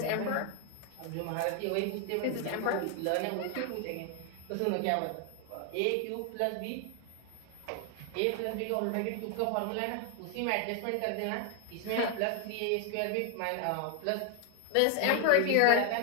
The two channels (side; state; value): both; different; correlation 0.00